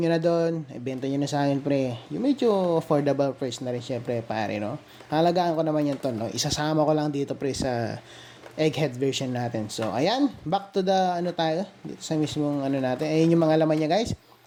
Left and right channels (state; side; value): identical; both; correlation 1.00